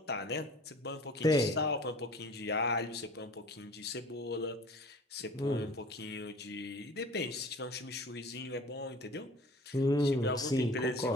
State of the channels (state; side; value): normal; both; correlation 0.44